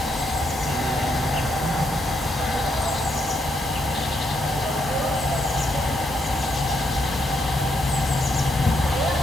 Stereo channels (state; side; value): normal; both; correlation 0.77